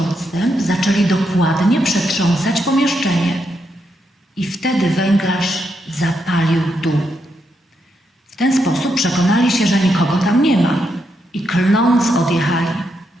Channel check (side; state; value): both; normal; correlation 0.81